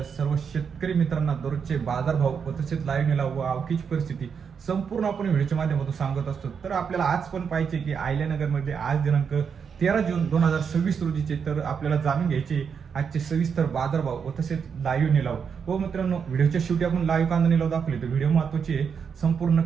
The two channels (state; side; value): quieter; left; 6.6 dB